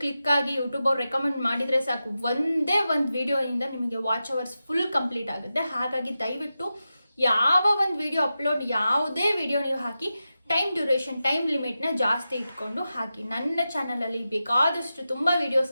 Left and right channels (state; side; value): inverted; both; correlation -0.92